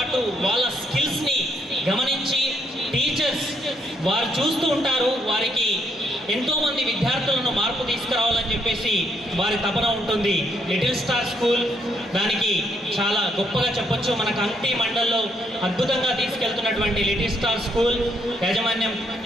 వాళ్ళ స్కిల్స్ని గమనించి టీచర్స్ వారు చూస్తూ ఉంటారు. వారికి ఎంతోమంది విద్యార్థులను మార్పు తీసుకురావాలని చెప్పేసి వారి తపన ఉంటుంది. లిటిల్ స్టార్ స్కూల్ దానికి చాలా గొప్పగా చెప్పొచ్చు. మన కంటి మండల్లో అద్భుతంగా తీసుకెళ్తున్నటువంటి లిటిల్ స్టార్ స్కూల్ యాజమాన్యం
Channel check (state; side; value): normal; both; correlation 0.73